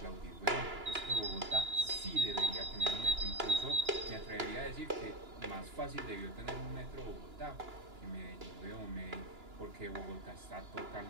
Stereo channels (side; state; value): left; late; 2.9 ms